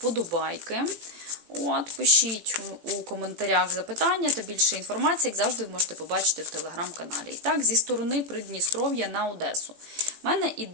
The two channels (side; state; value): left; late; 18 ms